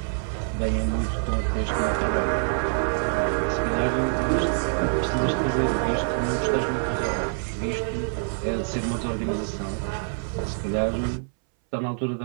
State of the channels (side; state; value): left; silent; 61 dB below the other